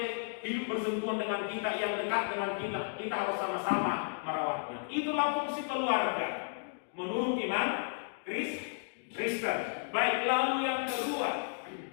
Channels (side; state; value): right; silent; digital silence